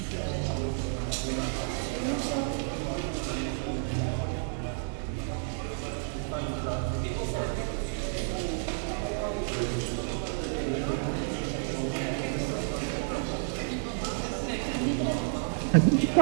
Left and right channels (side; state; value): left; silent; 57 dB below the other